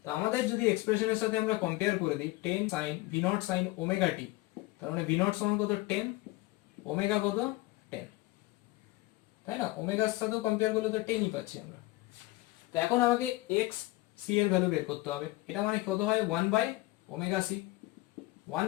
তো আমাদের যদি এক্সপ্রেশনের সাথে আমরা কম্পেয়ার করে দিই 10 sin v not sin omega t, তার মানে v নট সমান কত 10, ওমেগা কত 10, তাই না? ওমেগার সাথেও কম্পেয়ার করলে তো 10ই পাচ্ছি আমরা। তো এখন আমাকে x c এর ভ্যালু বের করতে হবে। এটা মানে কত হয় 1 by omega c, 1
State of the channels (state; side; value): quieter; right; 20.1 dB